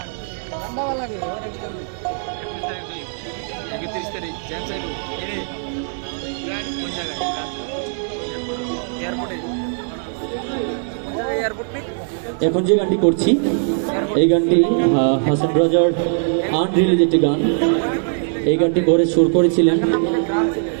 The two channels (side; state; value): left; silent; 65 dB below the other